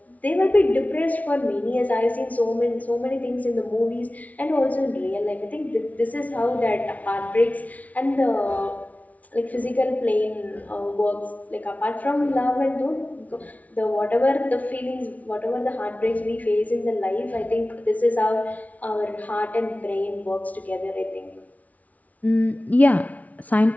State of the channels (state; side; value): late; right; 0.071 ms